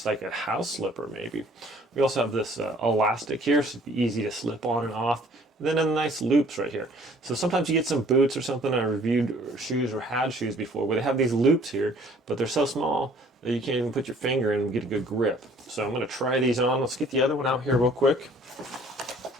like a house slipper maybe. We also have this elastic here, so it'd be easy to slip on and off. And then a nice loops right here. So sometimes you get some boots or something. I reviewed shoes or had shoes before where they have these loops here, but they're so small that you can't even put your finger in and get a good grip. So I'm going to try these on. Let's get the other one out here real quick.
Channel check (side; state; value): both; normal; correlation 0.56